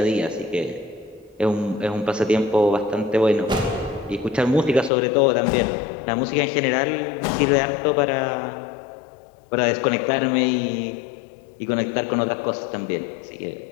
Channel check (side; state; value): right; drops out; at 4.9 s